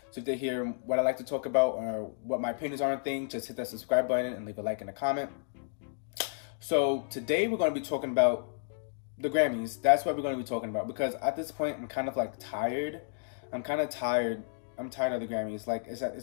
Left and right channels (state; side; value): silent; right; digital silence